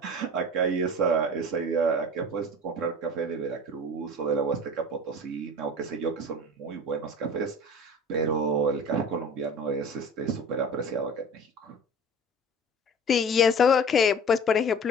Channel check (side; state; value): both; normal; correlation 0.40